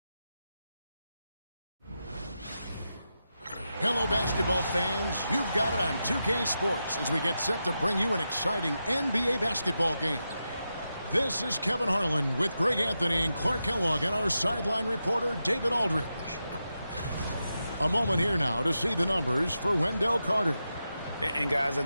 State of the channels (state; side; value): inverted; both; correlation -0.89